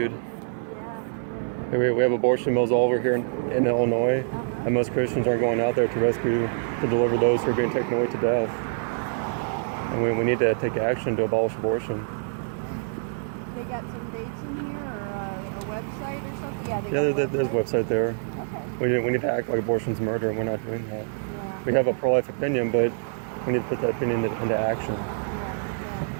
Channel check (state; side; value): silent; left; digital silence